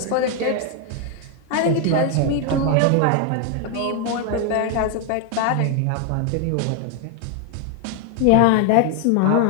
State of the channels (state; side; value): different; both; correlation 0.00